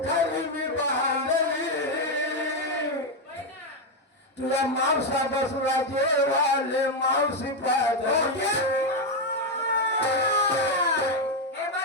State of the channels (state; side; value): normal; both; correlation 0.05